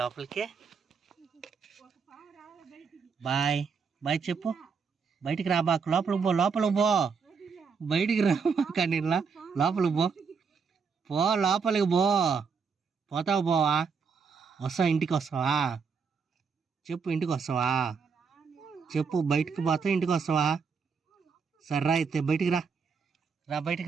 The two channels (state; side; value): quieter; left; 5.6 dB